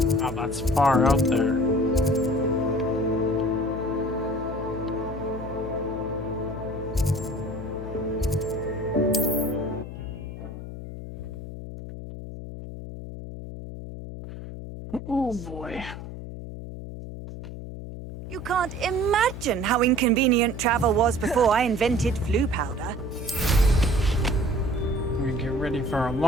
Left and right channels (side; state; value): left; noise; hum, 10 dB below the sound